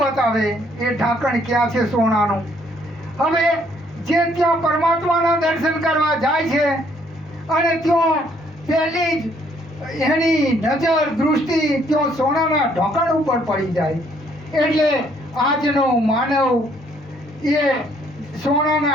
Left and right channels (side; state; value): both; normal; correlation 0.66